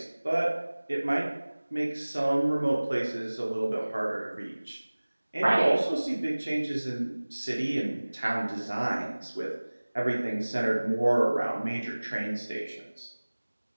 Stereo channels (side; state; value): both; inverted; correlation -1.00